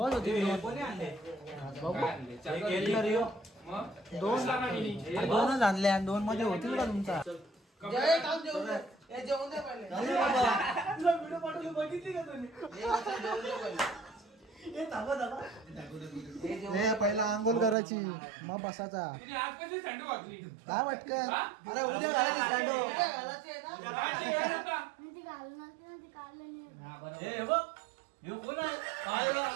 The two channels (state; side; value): drops out; left; at 17.8 s